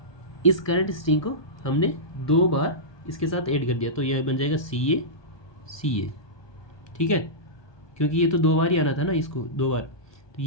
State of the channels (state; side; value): late; right; 1.2 ms